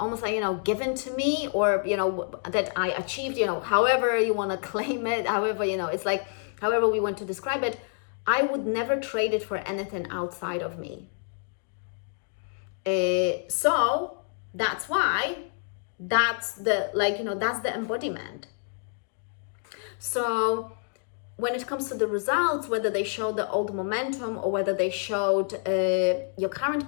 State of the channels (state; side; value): silent; right; 59 dB below the other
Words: like, given to me, or, that I achieved, however you want to claim it, however, it's like, however we want to describe it, I would never trade it for anything outside of me. So that's why that's the embodiment. So when it comes to the results, whether they show the old momentum or whether they showed your current